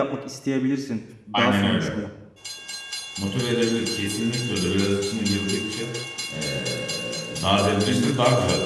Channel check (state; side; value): identical; both; correlation 1.00